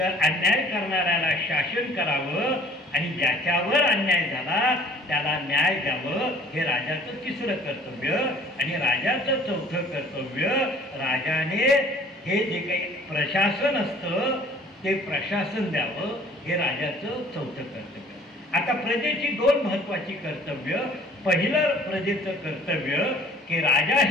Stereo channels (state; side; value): normal; both; correlation 0.53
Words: अन्याय करणाऱ्याला शासन करावं आणि ज्याच्यावर अन्याय झाला त्याला न्याय द्यावं. हे राजाचं तिसरं कर्तव्य. आणि राजाचं चौथं कर्तव्य, राजाने हे जे काही प्रशासन असतं ते प्रशासन द्यावं. हे राजाचं चौथं कर्तव्य. आता प्रजेची दोन महत्वाची कर्तव्य. पहिलं प्रजेचं कर्तव्य की राजा